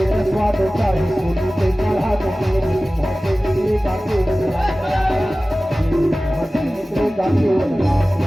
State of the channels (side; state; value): both; normal; correlation 0.97